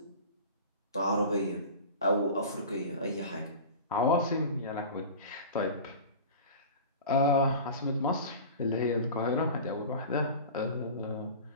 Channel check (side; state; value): both; inverted; correlation -0.35